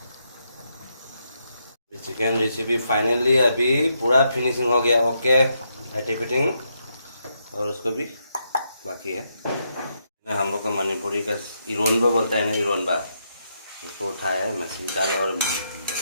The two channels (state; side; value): inverted; both; correlation -0.80